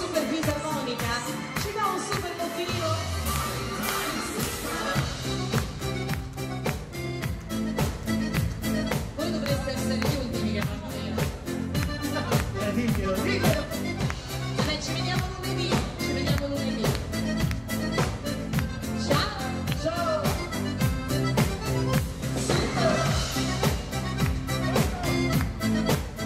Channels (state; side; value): identical; both; correlation 1.00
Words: fisarmonica, ci dà un super motivo? Essere gli ultimi che fanno vero. Diglielo. Vabbè, ci vediamo lunedì. Ciao. Ciao.